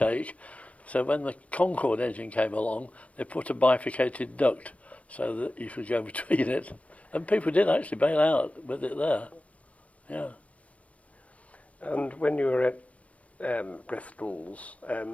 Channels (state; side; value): late; right; 0.066 ms